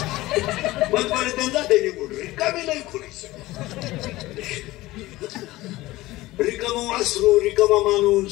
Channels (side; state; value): right; quieter; 18.3 dB